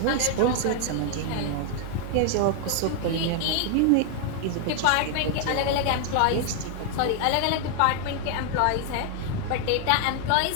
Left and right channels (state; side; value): different; both; correlation 0.00